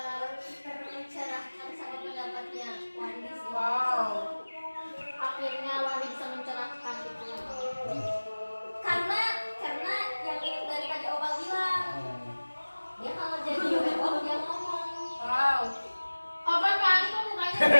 tercerahkan sama pendapatnya Wandi sih. Wow. Akhirnya Wandi bisa mencerahkan gitu. Karena yang ini dari tadi Opal bilang, dia kalau jadi werewolf dia ngomong. Wow. Opal paling kok mukanya.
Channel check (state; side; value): inverted; both; correlation -1.00